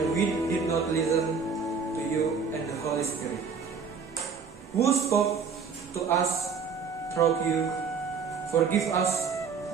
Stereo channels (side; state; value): left; quieter; 5.8 dB